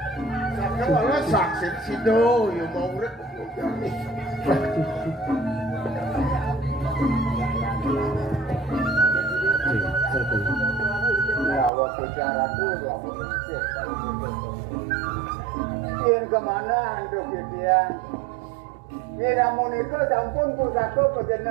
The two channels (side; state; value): left; drops out; at 11.7 s